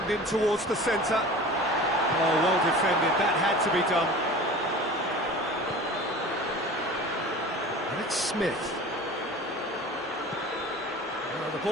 in towards the centre. Oh, well defended. That had to be done. And it's Smith. Oh, the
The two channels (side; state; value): both; normal; correlation 0.39